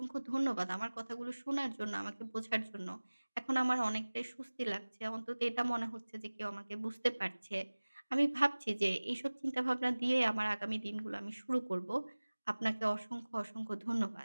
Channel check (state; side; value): inverted; both; correlation -1.00